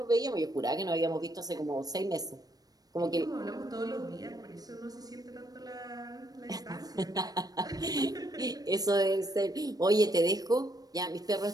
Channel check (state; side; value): late; left; 0.18 ms